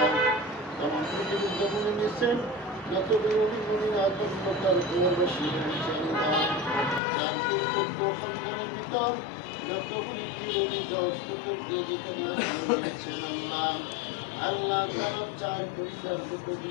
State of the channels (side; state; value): right; drops out; at 7.0 s